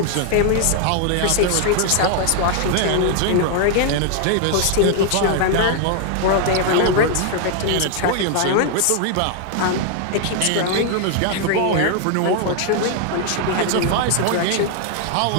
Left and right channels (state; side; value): different; both; correlation 0.00